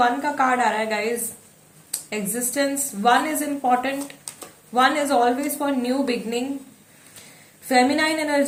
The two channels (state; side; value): identical; both; correlation 1.00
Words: का कार्ड आ रहा है guys, existence. 1 is important, 1 is always for new beginning. Feminine